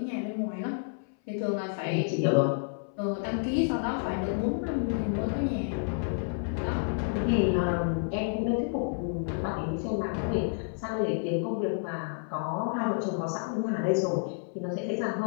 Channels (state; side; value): silent; right; 58 dB below the other